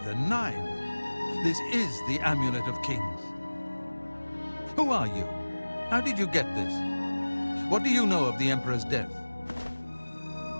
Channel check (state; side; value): inverted; both; correlation -1.00